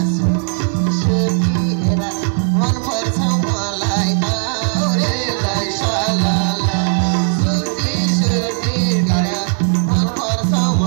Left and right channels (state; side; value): silent; left; digital silence